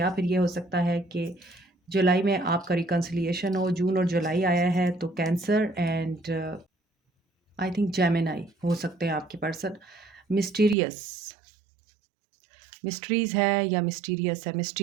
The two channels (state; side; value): drops out; left; at 10.8 s